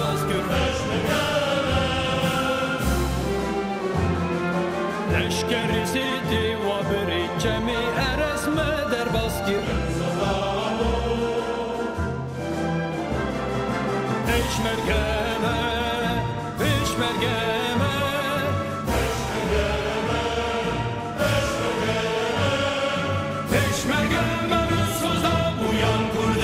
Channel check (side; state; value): both; identical; correlation 1.00